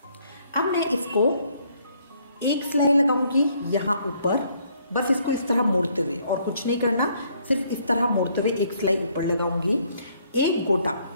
अब मैं इसको एक सिलाई लगाऊंगी यहाँ ऊपर, बस इसको इस तरह मोड़ते हुए, और कुछ नहीं करना, सिर्फ इस तरह मोड़ते हुए एक सिलाई ऊपर लगाऊंगी। एक गोटा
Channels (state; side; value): inverted; both; correlation -0.67